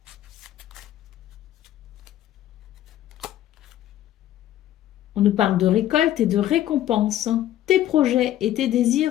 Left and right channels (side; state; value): right; quieter; 12.7 dB